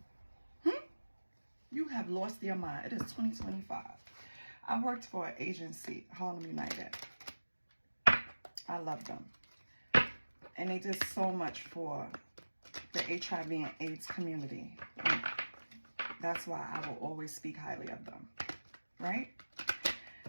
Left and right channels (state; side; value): inverted; both; correlation -1.00